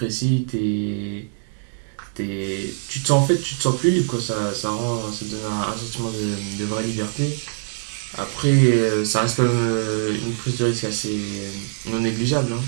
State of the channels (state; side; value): silent; left; 63 dB below the other